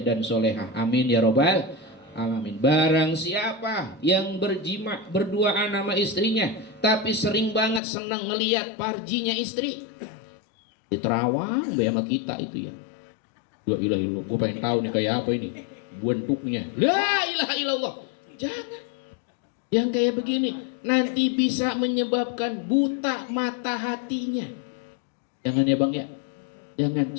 dan solehah. Amin ya robbal alamin. Barang siapa yang berjima berduaan sama istrinya tapi sering banget senang ngelihat parjinya istri, diterawang sama kita itu ya. La ilaha illallah, gue pengen tahu nih kayak apa ini bentuknya. La ilaha illallah. Jangan. Yang kayak begini nanti bisa menyebabkan buta mata hatinya. Jangan ya bang ya. Jangan.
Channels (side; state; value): right; drops out; at 7.8 s